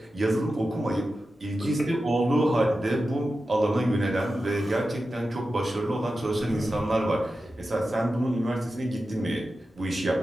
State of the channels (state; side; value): normal; both; correlation 0.92